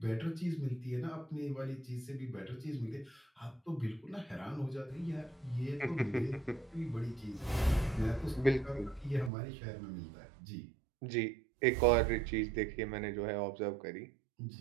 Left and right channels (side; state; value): left; drops out; at 9.3 s